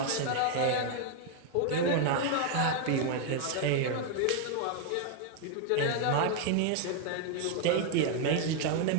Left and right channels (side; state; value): both; different; correlation 0.00